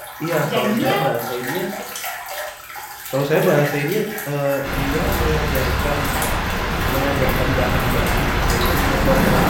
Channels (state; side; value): identical; both; correlation 1.00